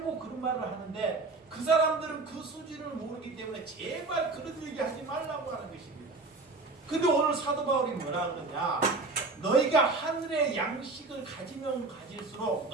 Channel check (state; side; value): quieter; left; 3.6 dB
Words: 그런 말을 하는데 그 사람들은 그 수준을 모르기 때문에 제발 그런 얘기 하지 말라고 하는 것입니다. 근데 오늘 사도 바울이 뭐라 그러냐? 너희가 하늘의 양식을 가지면 가질수록